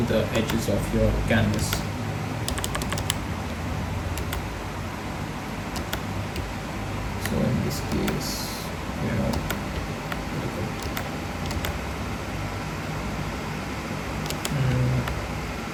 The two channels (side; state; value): both; identical; correlation 1.00